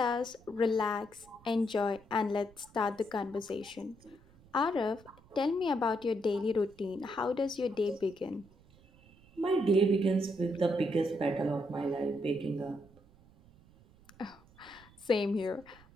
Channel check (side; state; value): right; noise; rumble, 26 dB below the sound